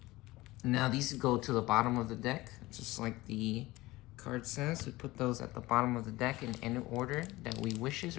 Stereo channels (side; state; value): right; quieter; 19.3 dB